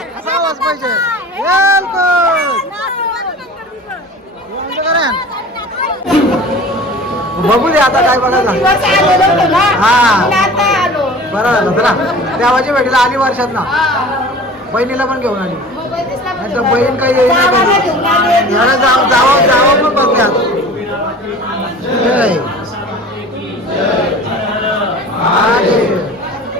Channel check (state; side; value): normal; both; correlation 0.41